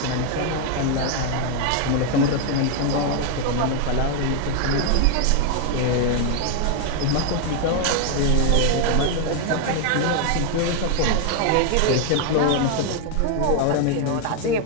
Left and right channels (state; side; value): different; both; correlation 0.00